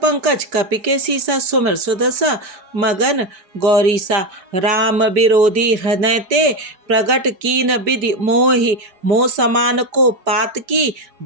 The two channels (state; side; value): late; left; 4.7 ms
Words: कपि के सीसा, सुमिर सुदशा मगन गौरीसा। राम विरोधी हृदय ते, प्रगट कीन विधि मोहि। मोह समान को पात की,